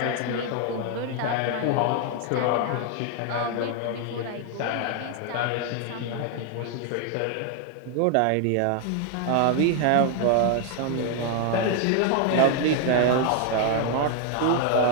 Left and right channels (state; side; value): different; both; correlation 0.00